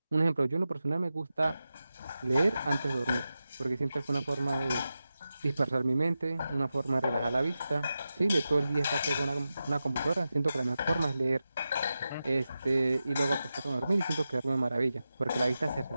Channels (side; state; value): both; inverted; correlation -0.92